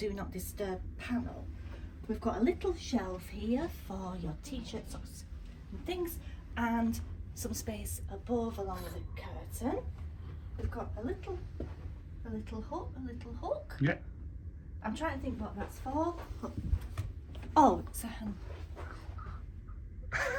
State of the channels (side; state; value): both; identical; correlation 1.00